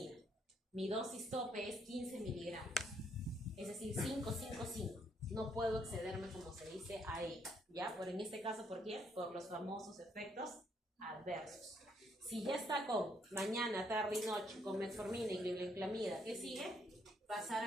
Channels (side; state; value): both; normal; correlation 0.71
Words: Mi dosis tope es 15 miligramos. Es decir, 5, 5, 5. No puedo excederme, como se dice, a ello. ¿Ya? En este caso, ¿por qué? Por los famosos efectos adversos. Si ya está con mañana, tarde y noche, con metformina y glibenclamida, ¿qué sigue? Pasar